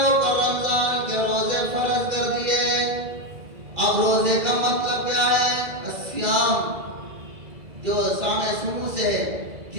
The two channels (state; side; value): late; left; 2.0 ms